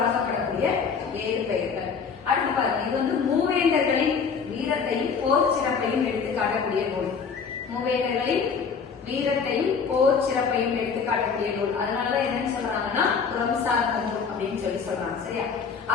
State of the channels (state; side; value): quieter; right; 5.8 dB